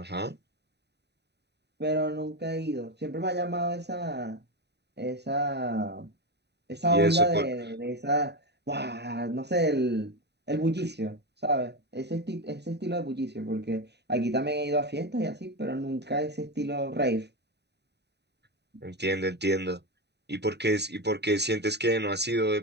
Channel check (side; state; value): left; late; 0.49 ms